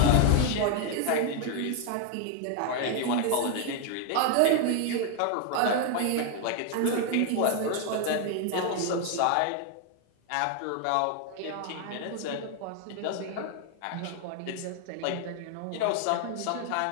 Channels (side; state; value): both; different; correlation 0.00